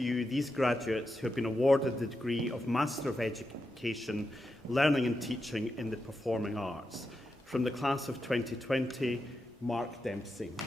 you these graduates who have been awarded the degree of Master of Education, Learning and Teaching in the Performing Arts. From the class of 2020, Mark Dempsey.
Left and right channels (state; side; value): normal; both; correlation 0.87